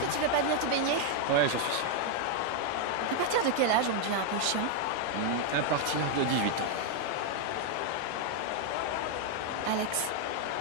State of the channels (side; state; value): both; different; correlation 0.00